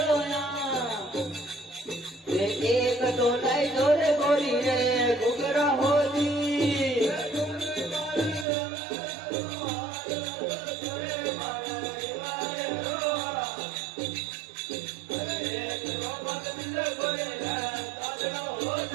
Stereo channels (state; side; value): drops out; left; at 8.5 s